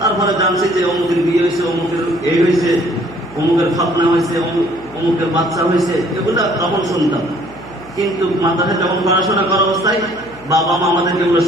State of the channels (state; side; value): noise; right; hum, 22 dB below the sound